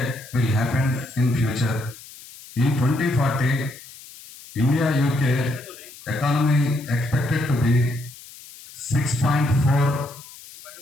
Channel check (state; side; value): noise; left; hiss, 18 dB below the sound